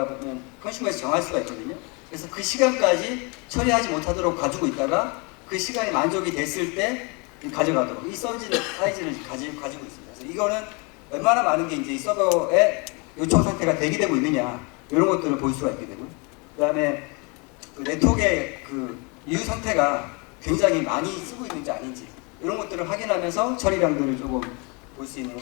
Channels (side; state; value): right; quieter; 31.1 dB